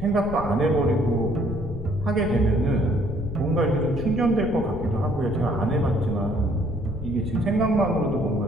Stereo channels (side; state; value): left; noise; rumble, 9 dB below the sound